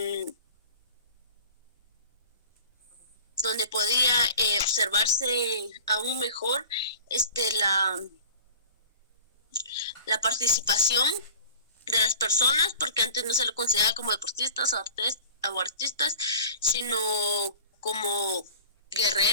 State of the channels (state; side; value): inverted; both; correlation -0.42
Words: donde podía observarse aún mejor la participación de las personas, porque antes no se lo consideraba como deportistas o artistas, sino como